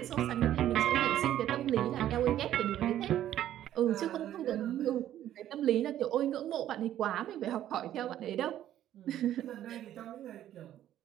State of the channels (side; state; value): left; quieter; 12.0 dB